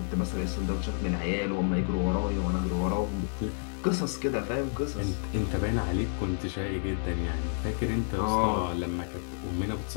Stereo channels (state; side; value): silent; right; 58 dB below the other